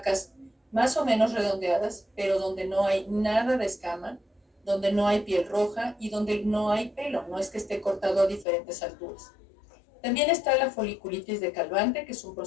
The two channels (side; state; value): right; drops out; at 8.5 s